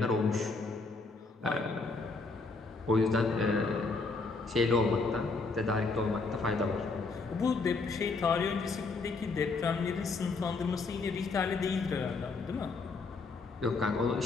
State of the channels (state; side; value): quieter; right; 4.0 dB